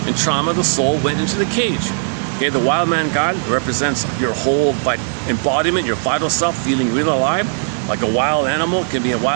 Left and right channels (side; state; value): left; silent; digital silence